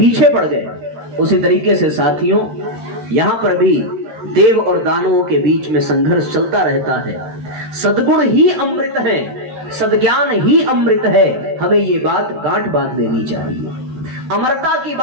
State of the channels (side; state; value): left; late; 13 ms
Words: पड़ गए। उसी तरीके से साथियों यहाँ पर भी देव और दानवों के बीच में संघर्ष चलता रहता है। सद्गुण ही अमृत है, सद्ज्ञान ही अमृत है, हमें ये बात गांठ बांध लेनी चाहिए। अमरता की